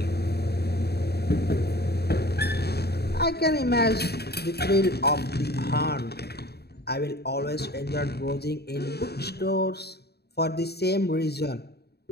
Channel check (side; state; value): right; late; 0.47 ms